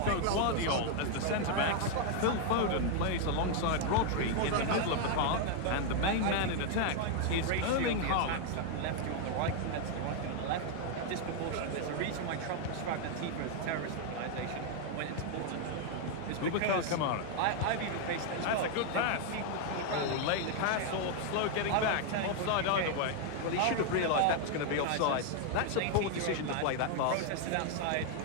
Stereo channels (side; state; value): both; different; correlation 0.00